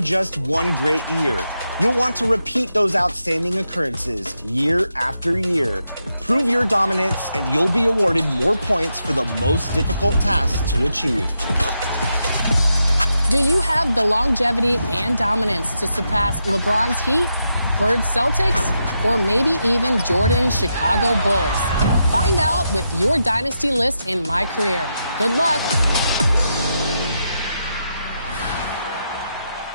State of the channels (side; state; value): both; inverted; correlation -0.84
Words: just one great year. You'll want to repeat those outstanding occurrences year after year. Prove your dominance, and you'll be awarded more points for the most difficult task to achieve. Do you have the longevity and dominance to surpass LeBron's Heat, Bird's Celtics, or maybe even Jordan's Chicago Bulls? Find out with your dynasty list in My Career. Good luck.